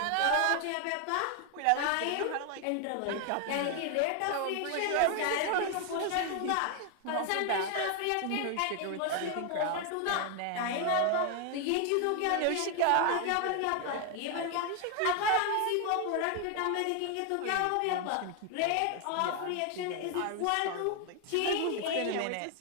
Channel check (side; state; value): both; different; correlation 0.01